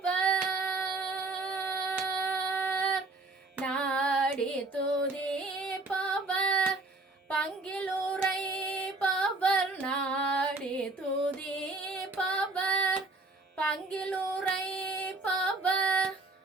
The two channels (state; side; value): quieter; left; 3.2 dB